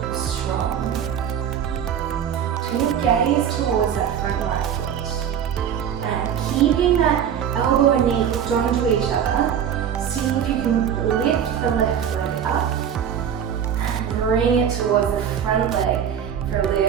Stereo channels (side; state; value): left; quieter; 8.7 dB